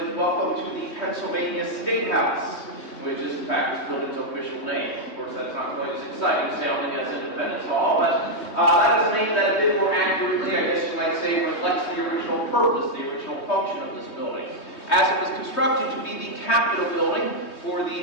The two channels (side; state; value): right; late; 3.2 ms